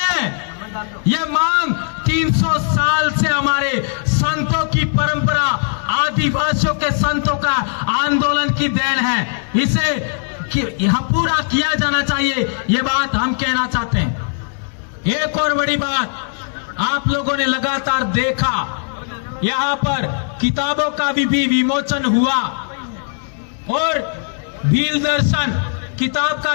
ये मांग 300 साल से हमारे संतों की परंपरा, आदिवासियों के संतों का आंदोलन की देन है। इसे यहां पूरा किया जाना चाहिए, ये बात हम कहना चाहते हैं। एक और बड़ी बात आप लोगों ने लगातार देखा, यहां पर किताबों का भी विमोचन हुआ और भील दर्शन किताब का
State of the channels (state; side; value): silent; right; digital silence